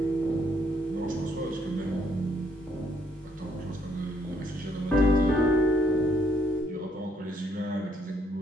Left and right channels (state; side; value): normal; both; correlation 0.70